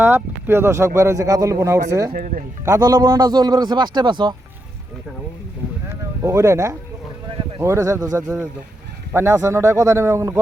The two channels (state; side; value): normal; both; correlation 0.83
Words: প্রিয় দর্শক বের হয়েছে কাতলের বোনা উঠছে কাতলের বোনাটা চলবে গেছে 5টায় পাঁচশো ওইটাই না ওইটা ছেড়ে দাও ছেড়ে দাও পানি আছে না ওটা কথা নেবে